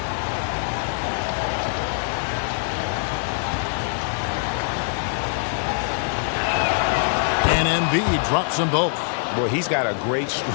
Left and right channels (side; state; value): right; silent; 60 dB below the other